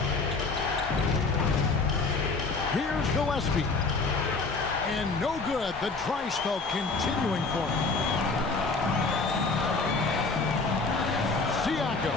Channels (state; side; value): quieter; right; 4.0 dB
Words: Here's Gillespie. And no good. The dry spell continuing for him.